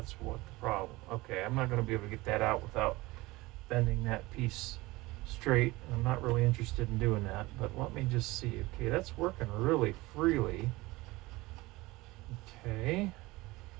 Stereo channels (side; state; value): left; quieter; 20.9 dB